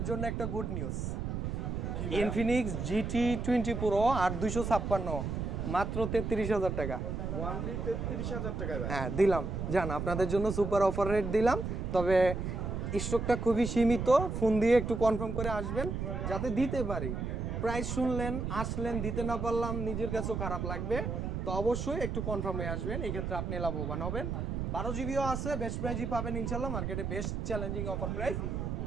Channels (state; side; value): noise; right; rumble, 3 dB below the sound